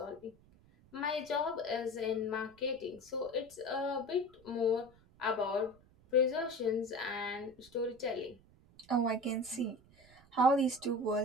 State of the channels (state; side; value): noise; right; rumble, 27 dB below the sound